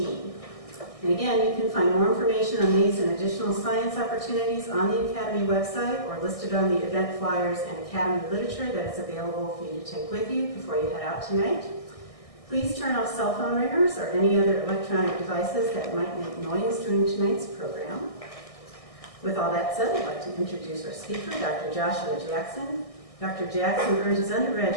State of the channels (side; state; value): right; late; 1.6 ms